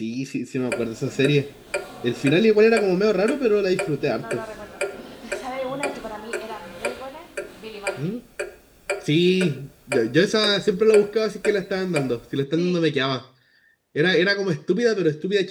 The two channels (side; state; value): both; identical; correlation 1.00